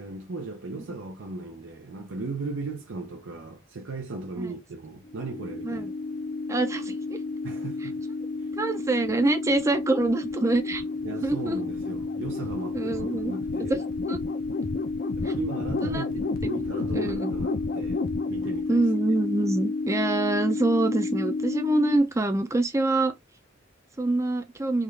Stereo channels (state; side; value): normal; both; correlation 0.71